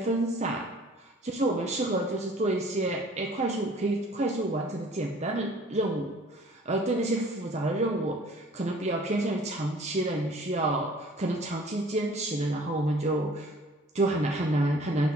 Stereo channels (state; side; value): normal; both; correlation 0.52